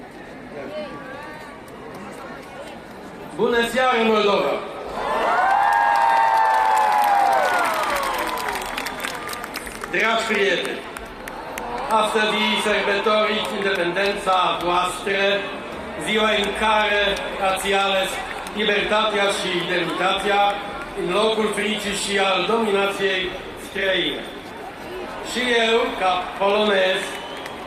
Yeah. Bună seara, Moldova! Dragi prieteni, astăzi sărbătoriți independența voastră, ziua în care ați ales libertatea și demnitatea în locul fricii și al dominației străine. Și eu, ca polonez,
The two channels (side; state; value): both; identical; correlation 1.00